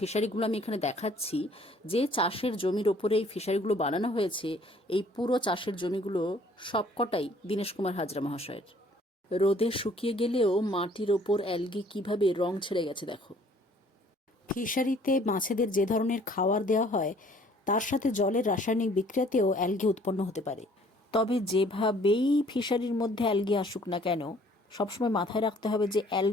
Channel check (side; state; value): both; normal; correlation 0.58